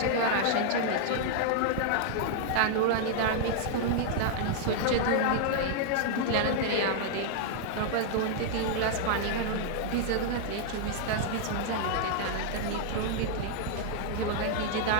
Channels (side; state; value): both; different; correlation -0.01